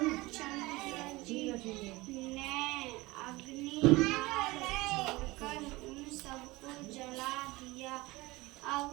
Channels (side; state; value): left; quieter; 21.2 dB